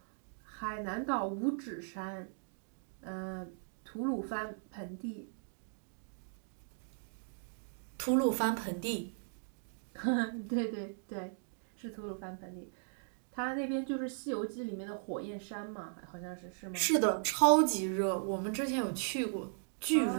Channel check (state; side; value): silent; left; digital silence